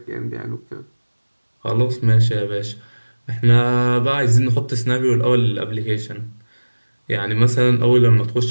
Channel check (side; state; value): both; inverted; correlation -1.00